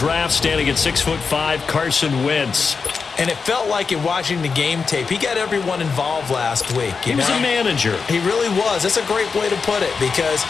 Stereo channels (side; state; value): right; quieter; 5.2 dB